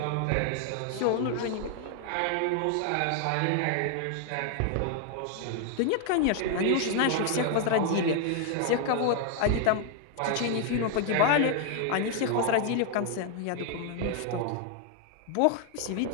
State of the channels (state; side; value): different; both; correlation 0.00